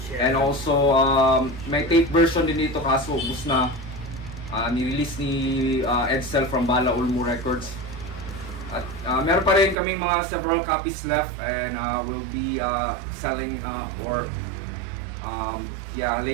And also, may tape version din dito, kaso ubus na. Nirelease ni Edsel from Bala Ulmo Records. At meron pa rin kaming mga several copies left, and we'll be selling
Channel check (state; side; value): drops out; left; at 9.8 s